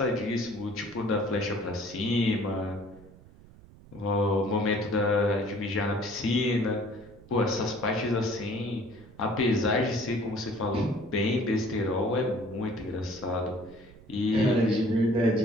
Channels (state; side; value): noise; right; rumble, 22 dB below the sound